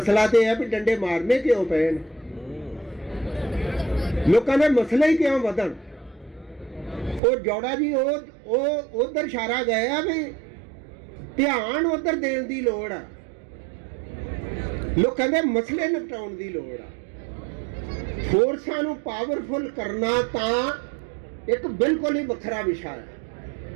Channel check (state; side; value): drops out; left; at 7.2 s